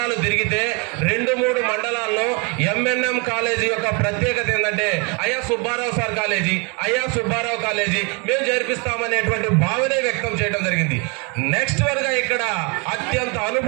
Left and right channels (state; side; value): quieter; left; 32.1 dB